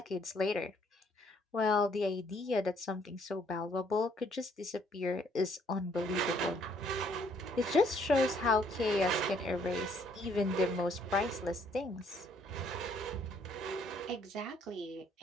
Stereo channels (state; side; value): normal; both; correlation 0.65